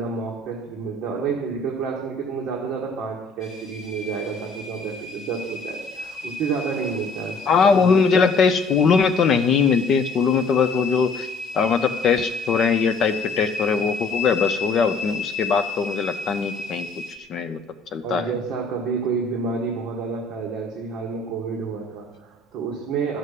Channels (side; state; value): right; quieter; 3.6 dB